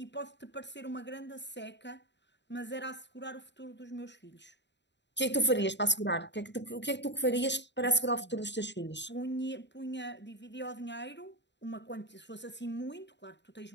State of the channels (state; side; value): late; right; 0.52 ms